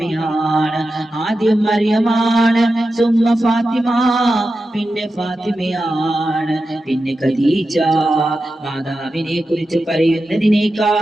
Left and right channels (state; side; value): normal; both; correlation 0.91